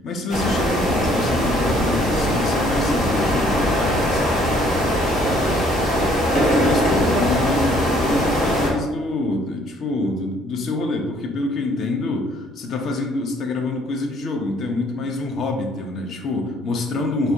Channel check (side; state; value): both; normal; correlation 0.62